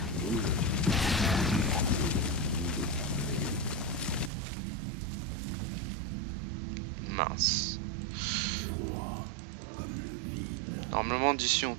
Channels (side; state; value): left; drops out; at 4.3 s